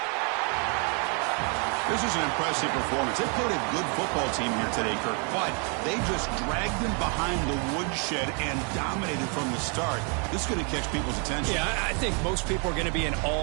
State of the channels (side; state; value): left; quieter; 36.9 dB